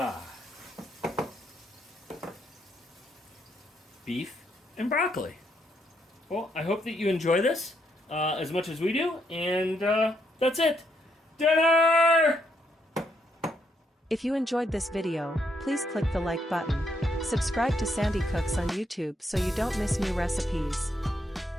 Beef and broccoli. Well, I hope that you enjoy this as much as we do, and that's it. Dinner! If you enjoyed this video, please click the like button. Subscribe to Sandi Cooks on YouTube so you don't miss new recipes.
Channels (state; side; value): normal; both; correlation 0.76